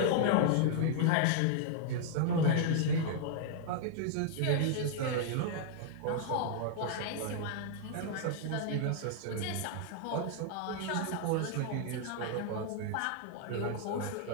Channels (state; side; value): different; both; correlation 0.00